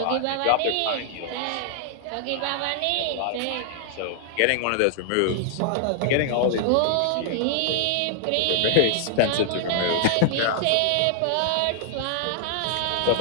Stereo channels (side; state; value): both; different; correlation 0.00